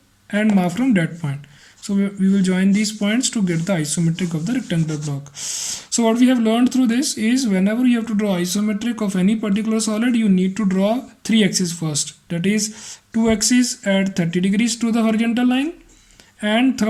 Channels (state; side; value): identical; both; correlation 1.00